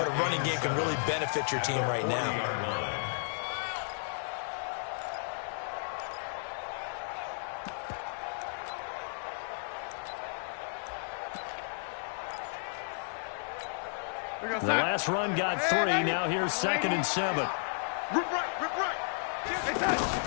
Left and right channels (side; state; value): right; silent; digital silence